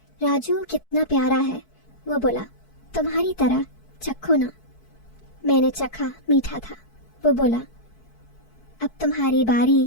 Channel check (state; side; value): late; right; 4.6 ms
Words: राजू कितना प्यारा है। वो बोला, तुम्हारी तरह, चखो ना। मैंने चखा, मीठा था। वो बोला, अब तुम्हारी